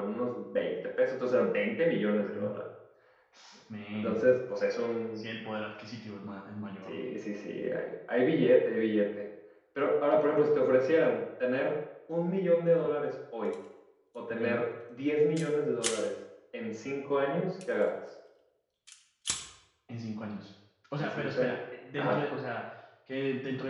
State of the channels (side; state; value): both; identical; correlation 1.00